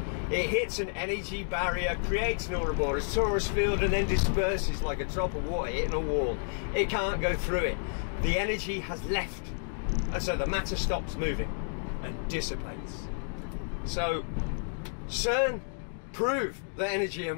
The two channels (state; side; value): silent; right; digital silence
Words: It hits an energy barrier, creates an Ouroboros torus field, and then disperses like a drop of water hitting a wall. It can't go through it. The energy has left, and so the matter stops moving and dissipates. So CERN proved that energy and